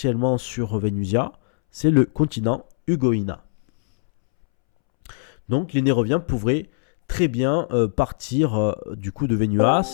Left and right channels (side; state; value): right; silent; 64 dB below the other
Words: sur Vénusia, c'est le continent Ugoïna. Donc les Néroviens pourraient très bien partir du coup de